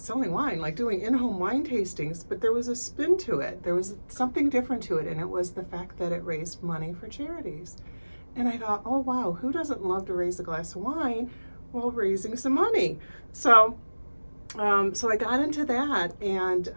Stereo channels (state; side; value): inverted; both; correlation -1.00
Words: wine, like doing in-home wine tastings, but there was a spin to it. There was something different to it, and it was the fact that it raised money for charities. And I thought, oh, wow, who doesn't love to raise a glass of wine while raising some money? So I got into that, and